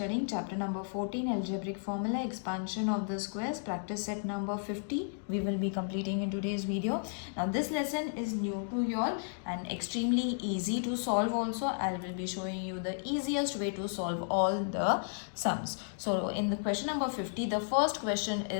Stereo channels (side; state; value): right; silent; digital silence